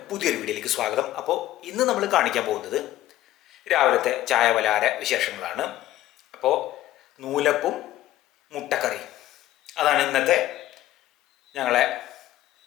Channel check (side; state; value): right; quieter; 14.4 dB